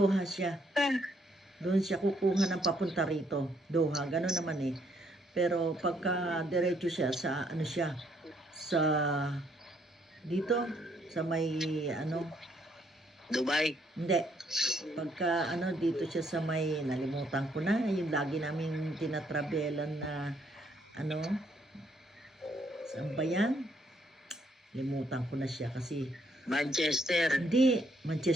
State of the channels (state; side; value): normal; both; correlation 0.70